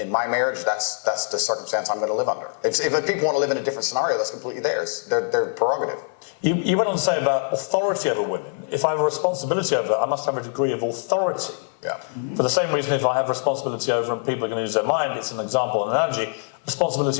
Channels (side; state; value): right; silent; 55 dB below the other